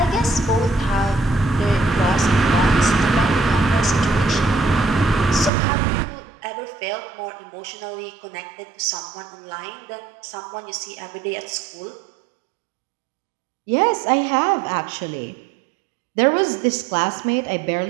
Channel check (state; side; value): drops out; left; at 5.5 s